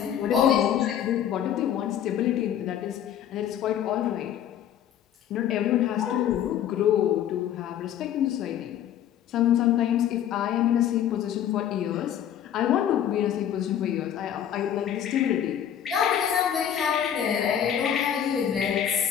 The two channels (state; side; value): quieter; right; 9.9 dB